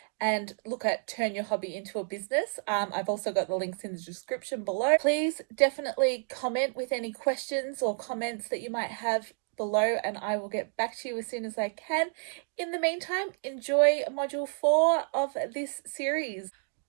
and look at Turn Your Hobby into a Business. I've also got the links in the description below. Please definitely comment with any questions or comments that you might have below, and I will get back to you as soon as I can. In the meantime, enjoy module 4 of this series.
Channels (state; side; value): silent; left; 58 dB below the other